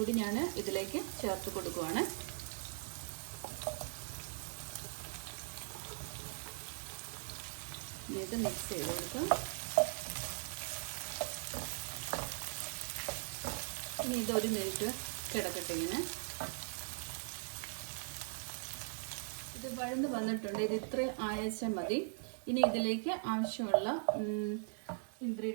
ഞാൻ ഇതിലേക്ക് ചേർത്ത് കൊടുക്കുകയാണ്. ഇത് മിക്സ് ചെയ്ത് കൊടുക്കാം. ഇനി ഇതൊരു മിനിറ്റ് കിടക്കട്ടെ ഇങ്ങനെ. ഇത് വഴന്ന് വന്നിട്ടുണ്ട്. ഇത് ഇത്രയും ആയച്ചാൽ മതി. ഇനി ഇതിലേക്ക് ആവശ്യമുള്ള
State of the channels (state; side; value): silent; left; digital silence